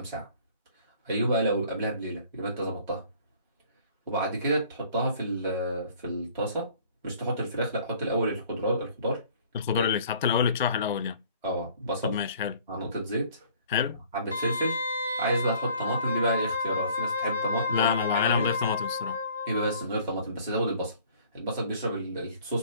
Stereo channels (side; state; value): both; inverted; correlation -0.54